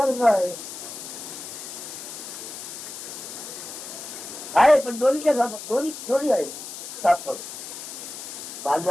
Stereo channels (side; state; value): left; noise; hiss, 10 dB below the sound